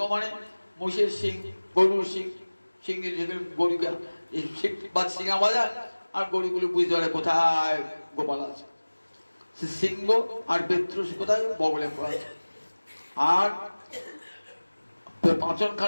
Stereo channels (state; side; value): inverted; both; correlation -1.00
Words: মানে মোষের সিং, গরুর সিং, সিং গরুকে সিংহা বাজায়, আর গরুগুলো বুঝতে পারে কোথায় গোপাল আছে। সিংহ আর বেত্র কোথায়, বগলে পড়া আছে। আর